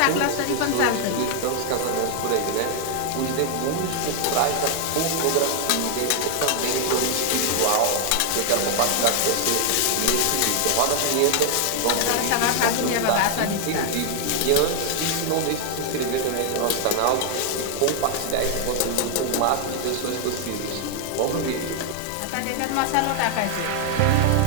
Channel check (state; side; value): different; both; correlation 0.00